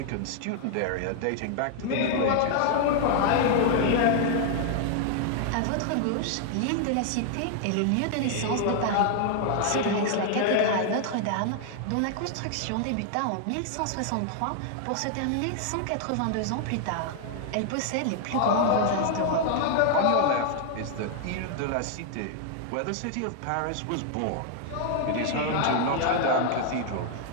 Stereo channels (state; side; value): different; both; correlation 0.00